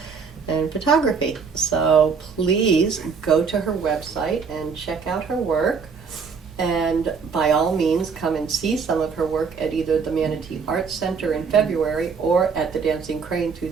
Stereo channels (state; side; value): quieter; left; 5.6 dB